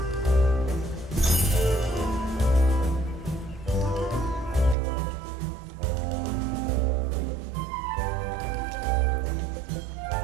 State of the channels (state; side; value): drops out; left; at 4.8 s